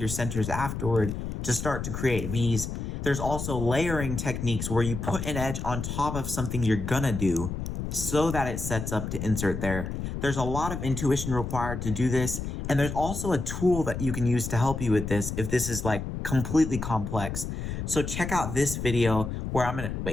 centers afterward to start to create Vs. There's also layering techniques where you put an edge on top of something you're gonna do so that it sets up to insert there. There's a lot of intuition required to do this, and there's also a tool that you can use to help you with this if this is like completely complex. So check out this video where I'm gonna,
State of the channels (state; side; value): noise; left; rumble, 5 dB below the sound